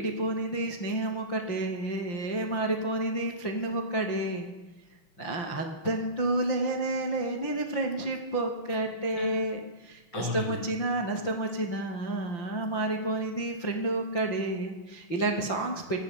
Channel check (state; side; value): late; right; 5.8 ms